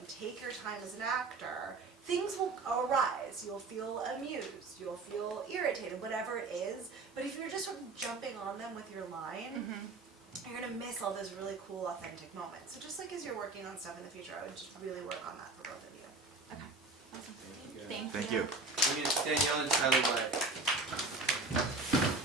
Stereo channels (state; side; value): quieter; left; 3.6 dB